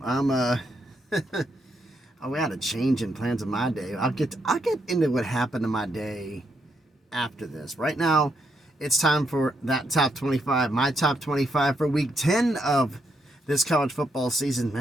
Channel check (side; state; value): both; normal; correlation 0.78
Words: We had a change in plans of my day. I'll get into what happened to my day after this. Right now, it's time for that top 25, my top 25 for week 10 of this college football season.